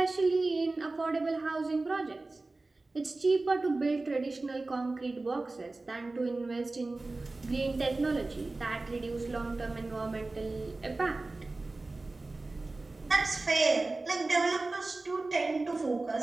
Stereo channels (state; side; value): quieter; left; 3.3 dB